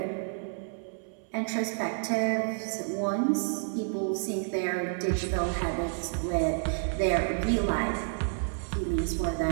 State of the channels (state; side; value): silent; left; 58 dB below the other